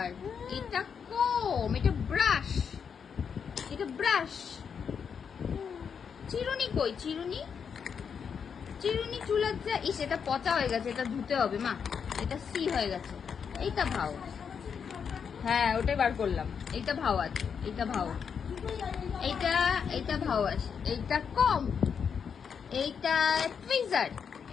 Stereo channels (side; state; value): right; quieter; 6.8 dB